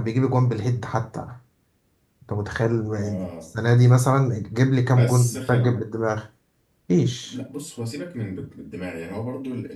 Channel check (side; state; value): both; identical; correlation 1.00